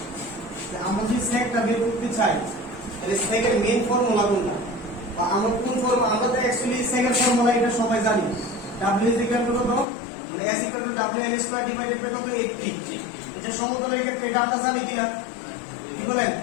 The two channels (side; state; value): right; drops out; at 9.9 s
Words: আমরা যদি সেকটা বের করতে চাই, তাহলে সেকের মেইন ফর্মুলা কোনটা বা আমরা কোন ফর্মুলা? আমরা তো অ্যাকচুয়ালি সেকেন্ড ফর্মুলা এটা সবাই জানি। W is equal to কত? মানে S equal to WL square divided by কত? 80। এটা সমতলের ক্ষেত্রে এটা আমরা জানি কিনা? কি বলেন?